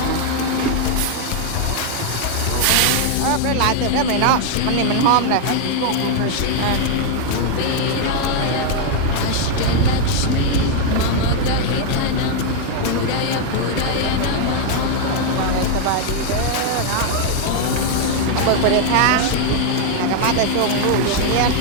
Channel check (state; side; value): different; both; correlation 0.00